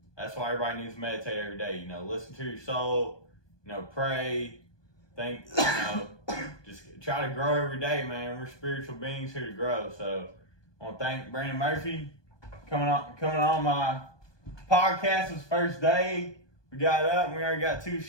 that's why everybody needs to meditate every day. You know, listen to your soul. You know, pray. Think. You know, just try to grow every day, man. We're spiritual beings here to grow. So, I want to thank Brandon Murphy coming on my podcast. This first day. We got up and we already got 2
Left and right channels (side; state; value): right; late; 1.2 ms